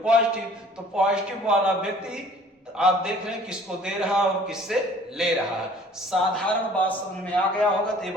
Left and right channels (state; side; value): normal; both; correlation 0.52